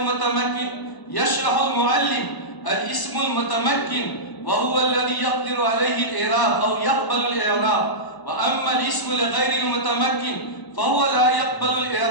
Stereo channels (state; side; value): late; right; 1.0 ms